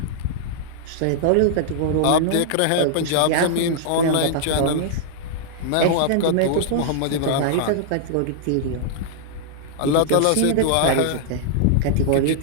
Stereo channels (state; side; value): different; both; correlation -0.01